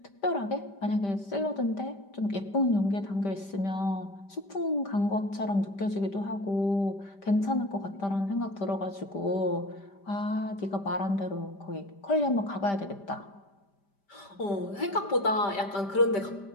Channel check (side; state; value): right; late; 5.1 ms